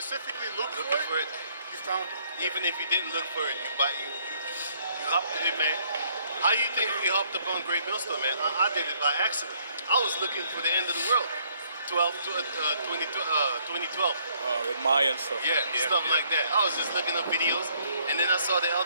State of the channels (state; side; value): inverted; both; correlation -0.67